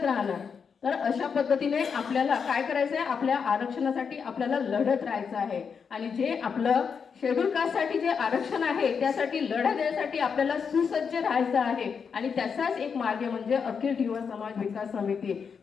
राहणार. तर अशा पद्धतीने आपल्याला काय करायचं आहे, आपल्या आरक्षणासाठी आपल्याला लढत राहायचं आहे आणि जे आपलं शेड्यूल कास्टसाठी जे आरक्षण आहे त्यासाठी लढा देण्यासाठी आपल्याला सुसज्ज राहायचं आहे आणि त्याचाच एक मार्ग म्हणजे अखिल धीवर समाज विकास समिती.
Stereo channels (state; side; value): quieter; right; 6.2 dB